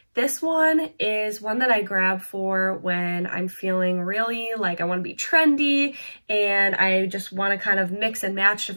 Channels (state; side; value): inverted; both; correlation -1.00